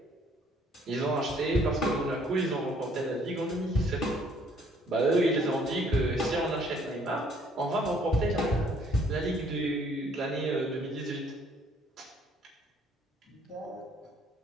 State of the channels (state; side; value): normal; both; correlation 0.62